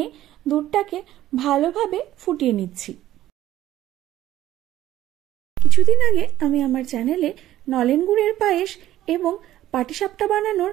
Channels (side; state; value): left; quieter; 13.8 dB